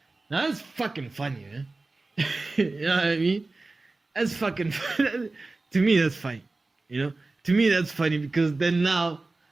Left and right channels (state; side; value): quieter; left; 3.4 dB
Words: Now that's fucking funny, man. You know what I mean? That's fucking funny. To me, that's funny. You know? To me, that's funny because then now,